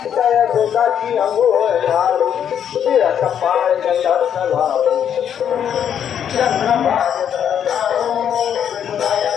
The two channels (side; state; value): right; quieter; 8.9 dB